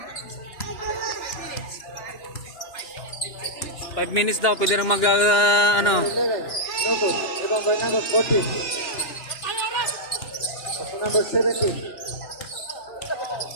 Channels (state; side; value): late; right; 2.9 ms